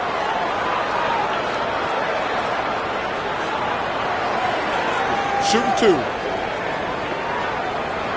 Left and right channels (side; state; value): both; identical; correlation 1.00